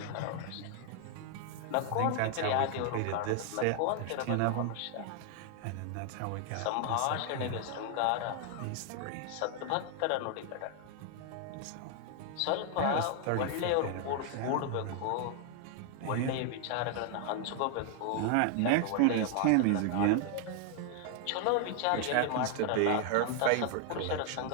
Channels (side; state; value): both; different; correlation 0.00